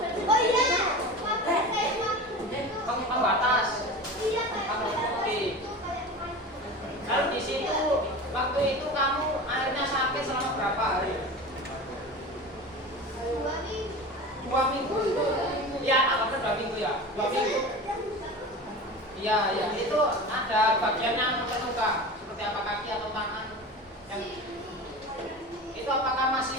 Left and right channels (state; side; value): normal; both; correlation 0.32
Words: Waktu itu kamu akhirnya sakit selama berapa hari? 2 minggu. Ya, apa 2 minggu ya? 2 minggu. Iya, ya. Itu ada bagian yang terluka, seperti apa kaki atau tangan? Itu apakah